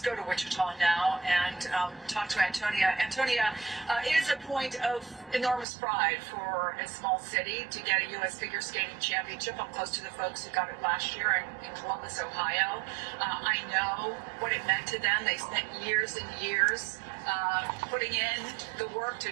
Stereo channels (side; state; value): left; drops out; at 5.7 s